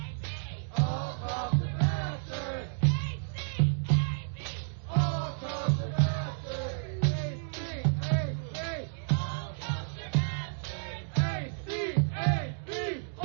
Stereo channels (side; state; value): left; silent; digital silence